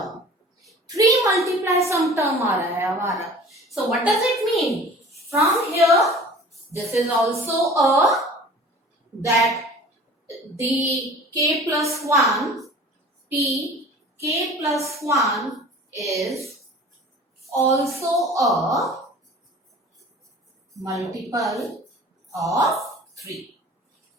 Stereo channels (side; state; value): both; normal; correlation 0.43